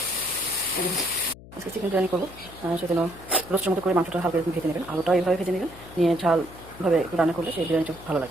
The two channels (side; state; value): left; noise; hum, 18 dB below the sound